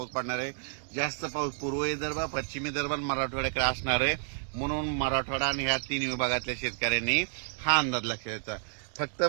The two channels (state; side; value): silent; left; digital silence